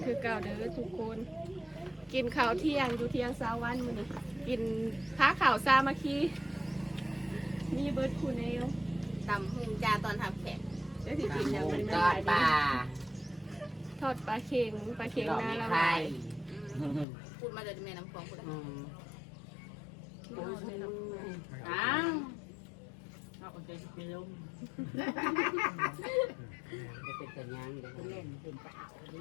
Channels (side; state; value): right; drops out; at 17.1 s